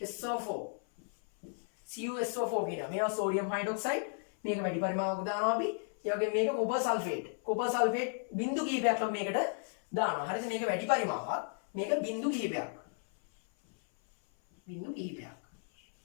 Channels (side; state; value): right; silent; 55 dB below the other